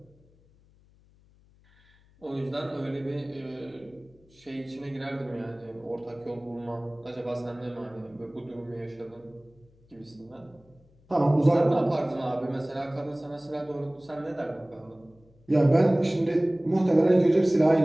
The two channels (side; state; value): left; noise; hum, 30 dB below the sound